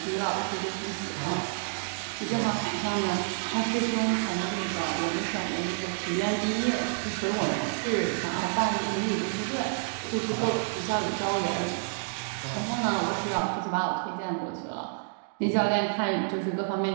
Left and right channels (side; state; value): left; silent; digital silence